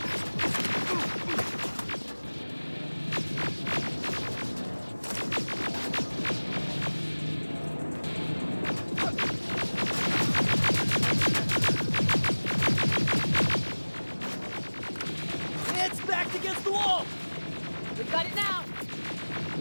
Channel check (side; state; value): both; inverted; correlation -1.00